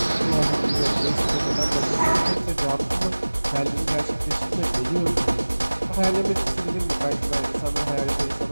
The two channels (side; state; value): both; inverted; correlation -1.00